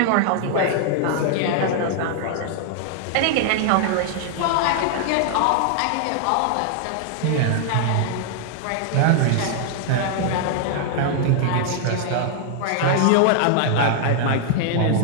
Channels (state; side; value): different; both; correlation 0.00